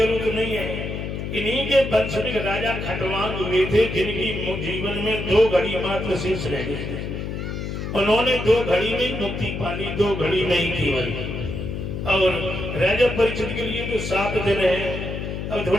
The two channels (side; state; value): left; noise; hum, 5 dB below the sound